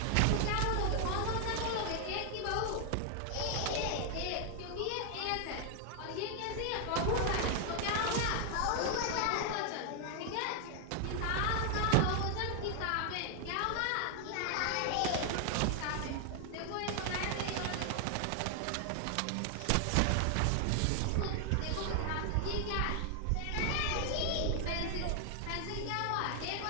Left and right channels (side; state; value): both; different; correlation 0.00